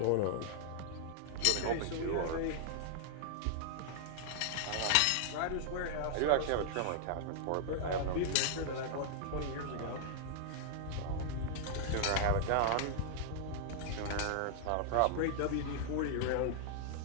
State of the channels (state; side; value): different; both; correlation -0.01